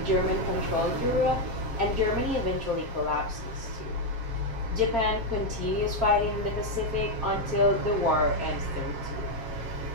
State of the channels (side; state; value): left; late; 7.4 ms